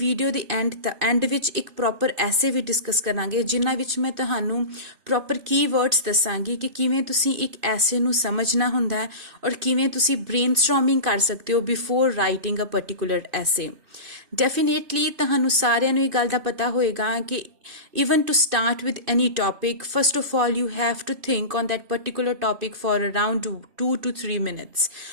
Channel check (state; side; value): late; left; 2.5 ms